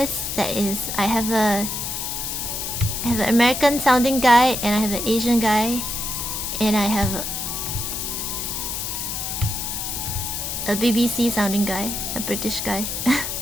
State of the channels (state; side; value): noise; left; hiss, 3 dB below the sound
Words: that is, I have an American sounding guy, and I have an Asian guy, and I have A BBC sounding guy, a British guy.